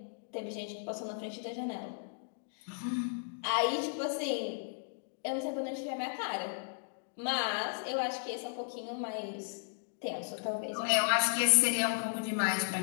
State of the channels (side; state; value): right; silent; digital silence